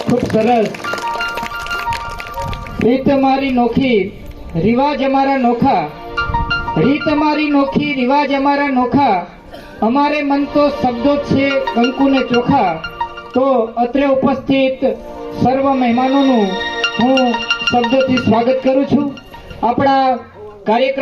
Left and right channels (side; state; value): both; identical; correlation 1.00